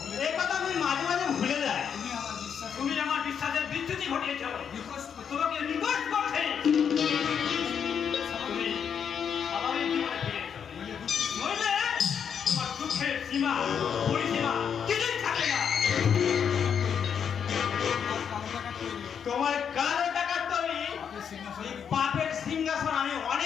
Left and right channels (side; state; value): right; quieter; 7.6 dB